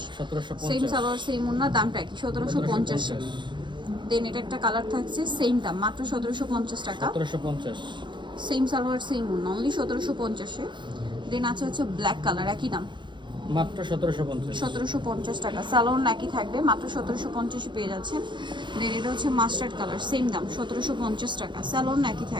1750। সেম সালোয়ার সেম ওনা, দামটা একই, 1750। দেন এটা একটা কালার থাকছে, সেম দাম, মাত্র 1750 টাকা। 1750। সেম সালোয়ার সেম ওনা, অনলি 1750-এ। দেন আছে হচ্ছে ব্ল্যাক কালার, একই দাম, মাত্র 1750। 1750 টাকা। সালোয়ার একই থাকবে, মাত্র 1750-এ পেয়ে যাচ্ছেন। দেন এটা হচ্ছে মাস্টার্ড কালার, সেম দাম, 1750 টাকা। সালোয়ার একই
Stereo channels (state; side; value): late; left; 0.23 ms